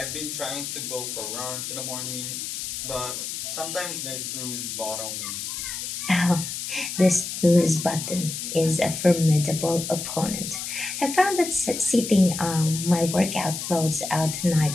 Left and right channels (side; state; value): left; noise; hiss, 5 dB below the sound